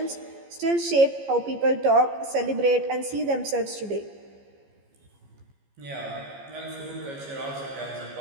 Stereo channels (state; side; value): late; left; 15 ms